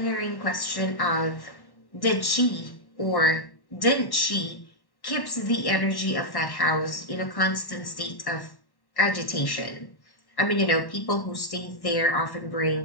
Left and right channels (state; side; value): late; right; 1.1 ms